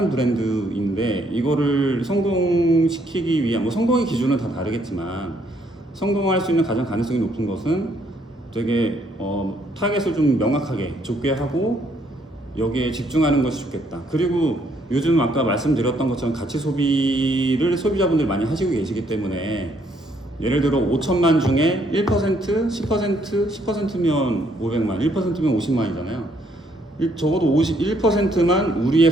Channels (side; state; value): both; normal; correlation 0.69